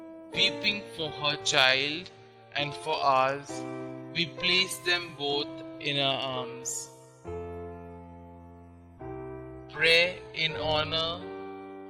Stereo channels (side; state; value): both; identical; correlation 1.00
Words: weeping for her child and for ours. We place them both in our arms. Pray in honor